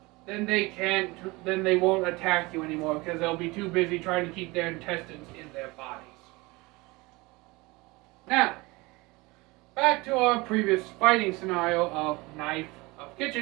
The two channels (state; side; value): quieter; left; 23.5 dB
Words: then they won't attack you anymore because they'll be too busy trying to keep their intestines in their bodies. Now, back to our previous fighting scenario of